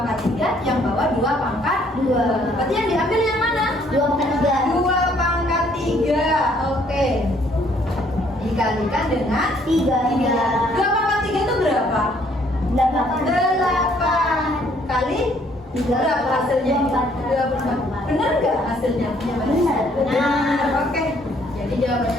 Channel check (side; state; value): both; normal; correlation 0.64